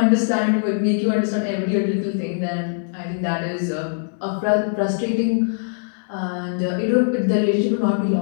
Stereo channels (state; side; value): silent; right; digital silence